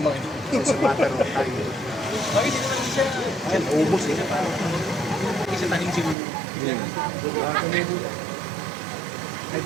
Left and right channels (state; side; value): drops out; left; at 6.2 s